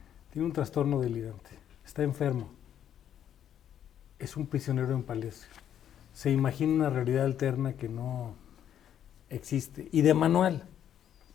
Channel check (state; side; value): quieter; right; 9.9 dB